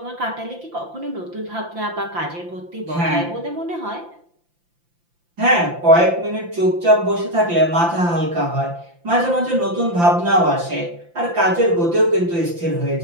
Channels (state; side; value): late; left; 5.8 ms